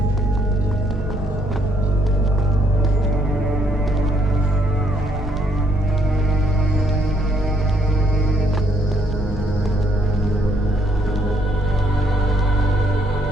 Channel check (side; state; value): right; noise; hum, 22 dB below the sound